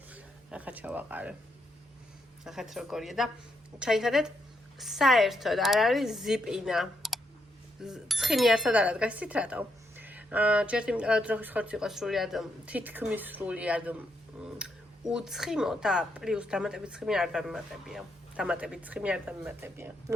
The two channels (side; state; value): both; normal; correlation 0.79